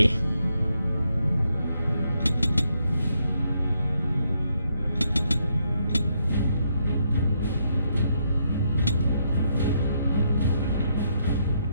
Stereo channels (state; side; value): inverted; both; correlation -0.77